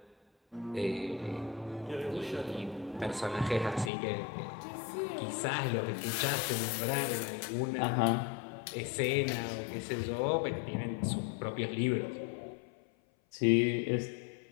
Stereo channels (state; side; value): drops out; right; at 3.9 s